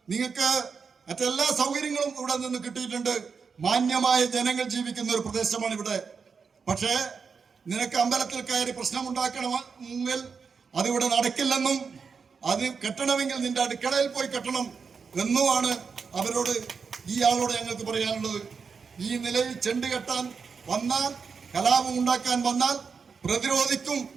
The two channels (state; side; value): quieter; left; 5.6 dB